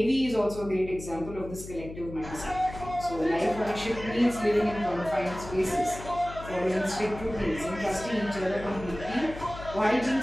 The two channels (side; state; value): left; noise; hum, 13 dB below the sound